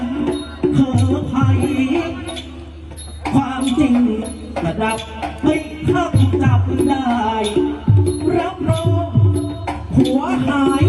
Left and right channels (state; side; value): identical; both; correlation 1.00